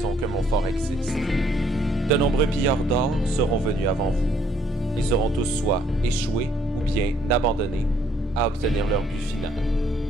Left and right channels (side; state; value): both; normal; correlation 0.66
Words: que mon fort existe. De nombreux pilleurs d'or seront venus avant vous. Ils auront tous soit échoué ou bien abandonné à obtenir leur but final.